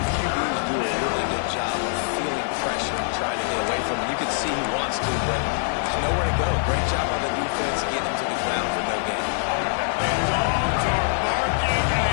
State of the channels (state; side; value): silent; right; digital silence